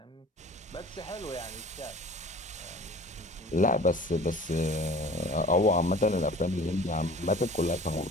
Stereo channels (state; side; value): normal; both; correlation 0.45